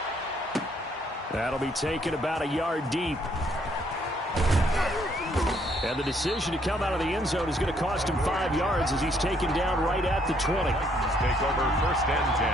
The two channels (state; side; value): normal; both; correlation 0.68